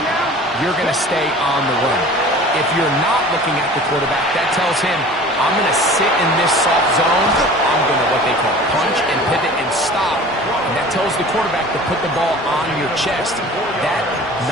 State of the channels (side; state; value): both; normal; correlation 0.43